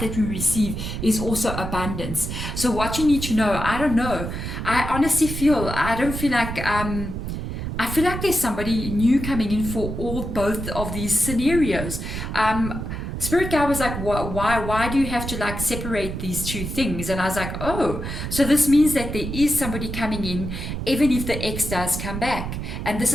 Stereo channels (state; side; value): noise; right; rumble, 5 dB below the sound